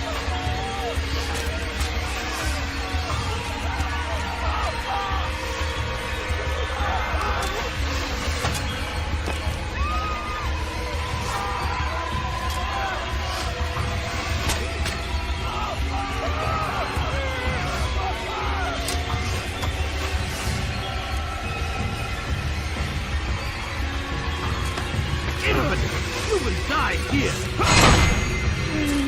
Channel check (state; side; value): identical; both; correlation 1.00